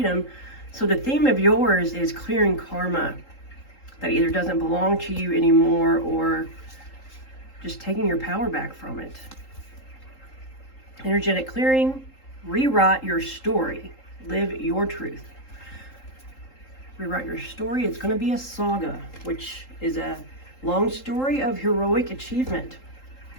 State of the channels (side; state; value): right; late; 3.8 ms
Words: So the theme of yours is clearing karma that either doesn't belong to you anymore or just taking your power back from it. Energetic clearing, rewrite your story, live your truth. Rewrite your story. It's going to be a saga, which is a long story of heroic achievement.